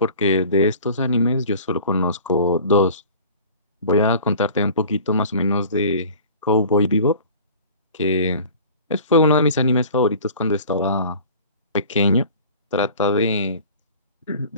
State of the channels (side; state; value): both; inverted; correlation -0.44